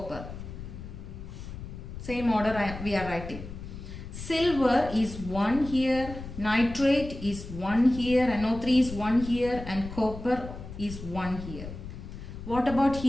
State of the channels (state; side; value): noise; left; rumble, 11 dB below the sound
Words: Same order we are writing. Silver is 1 here, nitrate is 1 here, NO3 is 1 here and copper is 1 here. What about